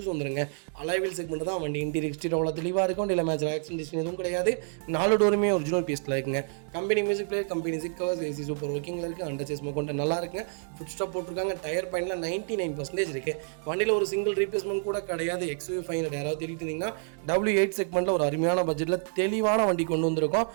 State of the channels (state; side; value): silent; left; 59 dB below the other